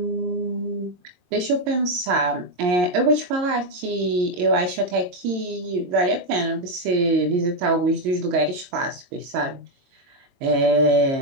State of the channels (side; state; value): left; late; 22 ms